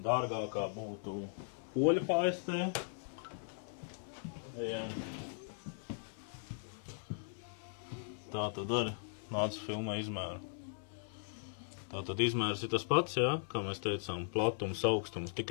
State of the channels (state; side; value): silent; right; 52 dB below the other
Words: dārgākā būtu oļa paistē. Tā tad arī nāca filmē izmēru. Tā tad izmērs ir tas pats, jā, kā mēs teicām, platums, augstums,